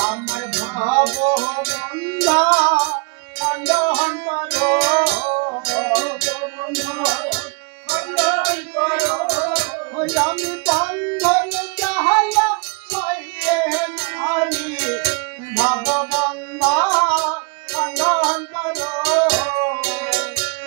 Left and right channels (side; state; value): left; quieter; 32.6 dB